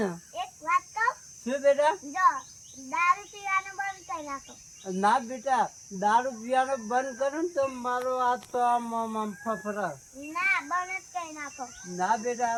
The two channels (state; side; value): identical; both; correlation 1.00